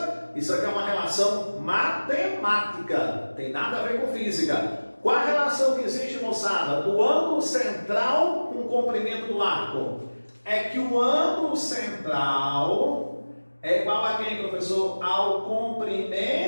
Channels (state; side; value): inverted; both; correlation -1.00